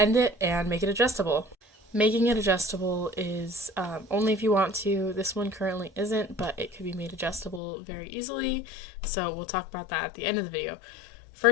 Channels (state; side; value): drops out; right; at 7.6 s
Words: it and make it adjustable. Making it adjustable is only if you want to. This one currently isn't, but it could be made adjustable very easily, so we'll talk about that at the end of the video.